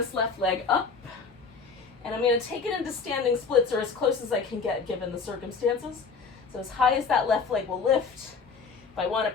left leg up. And I'm going to take it into standing splits, or as close as I can get given the circumstances. So as high as that left leg will lift. If I want to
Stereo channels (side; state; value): right; quieter; 5.2 dB